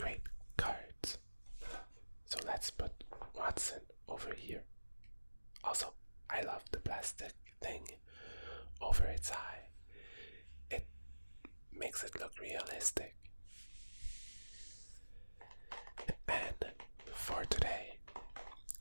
cards. So let's put Watson over here. Also, I love the plastic thing over its eye. It makes it look realistic. And for today,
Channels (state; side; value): inverted; both; correlation -1.00